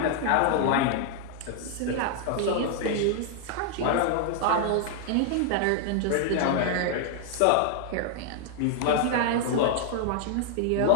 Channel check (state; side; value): different; both; correlation 0.00